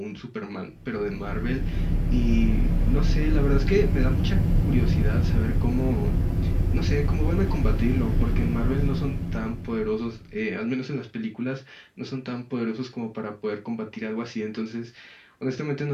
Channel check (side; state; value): both; identical; correlation 1.00